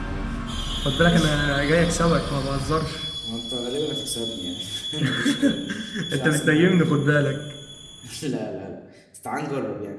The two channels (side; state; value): both; identical; correlation 1.00